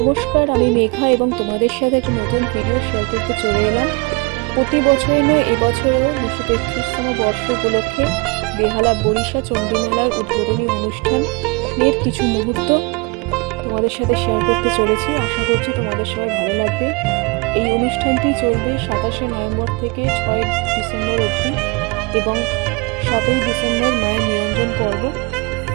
নমস্কার, আমি মেঘা এবং তোমাদের সাথে একটা নতুন ভিডিও শেয়ার করতে চলে এলাম। প্রতি বছরই নয়, এবছরও 233তম বর্ষ উপলক্ষে বেহালা বরিশা চণ্ডীমেলার উদ্বোধনী অনুষ্ঠানের কিছু মুহূর্ত তোমাদের সাথে শেয়ার করতে চলেছি। আশা করছি তোমাদের সবাই ভালো লাগবে। এই অনুষ্ঠানটি চলবে 27শে নভেম্বর থেকে 6 ডিসেম্বর অবধি এবং 7ই ডিসেম্বর মায়ের নিরঞ্জন পর্ব।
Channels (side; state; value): left; quieter; 28.0 dB